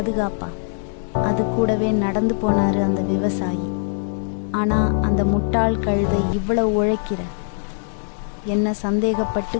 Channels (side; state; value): right; silent; digital silence